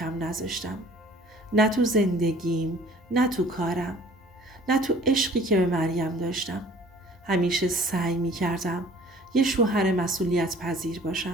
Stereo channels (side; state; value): both; normal; correlation 0.51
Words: نذاشتم. نه تو زندگیم، نه تو کارم، نه تو عشقی که به مریم داشتم. همیشه سعی می کردم یه شوهر مسئولیت پذیر